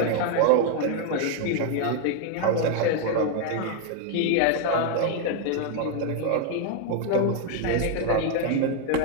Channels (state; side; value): different; both; correlation 0.01